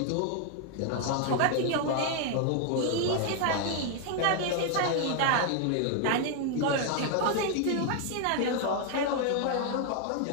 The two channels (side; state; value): both; different; correlation 0.00